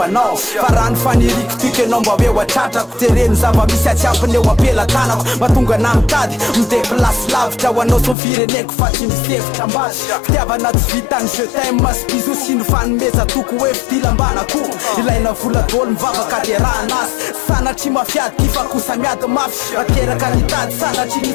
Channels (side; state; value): right; drops out; at 8.2 s